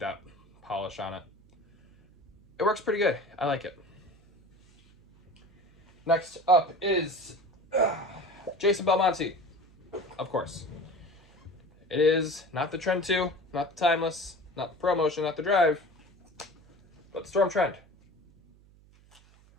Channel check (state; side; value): noise; right; hum, 28 dB below the sound